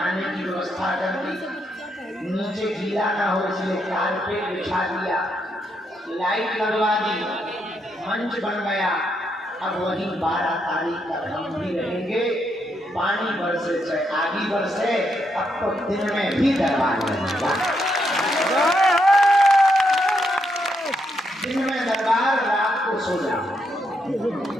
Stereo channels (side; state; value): both; normal; correlation 0.79